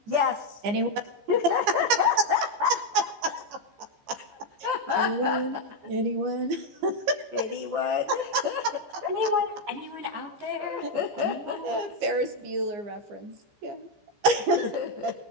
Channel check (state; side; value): late; left; 15 ms